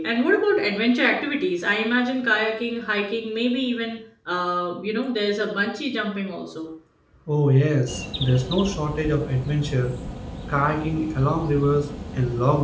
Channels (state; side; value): identical; both; correlation 1.00